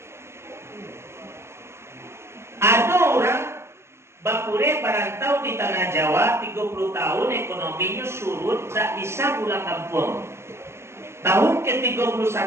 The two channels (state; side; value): late; left; 0.13 ms